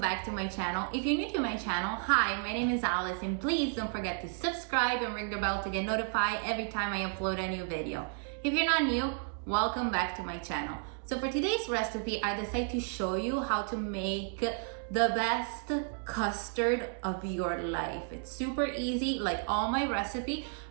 back to my channel. If you're new to my channel, hi, my name is Alice and please don't forget to subscribe and ring the bell to get notified every time I upload a new video. If you're not new, welcome back to my channel. So for today's recipe, I decided to show you how to make the best custard of your life. It's super easy, like all my recipe,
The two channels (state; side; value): silent; left; 56 dB below the other